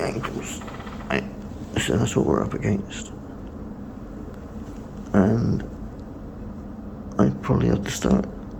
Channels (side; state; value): both; identical; correlation 1.00